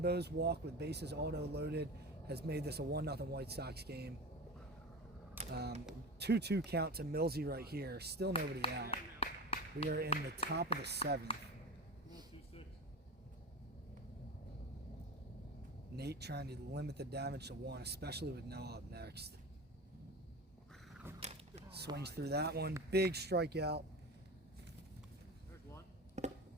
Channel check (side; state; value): both; normal; correlation 0.29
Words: Boas walk with bases auto loaded has made this a 1-0 White Sox game. 2-2 count to Millsy right here. Still nobody out. We are in the top of the 7th. Nate trying to limit the damage to 1, especially with Noah up next. Swings through that one. Big strikeout. There's one.